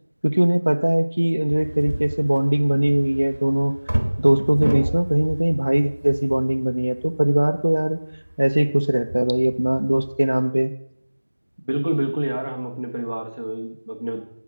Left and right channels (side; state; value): both; inverted; correlation -1.00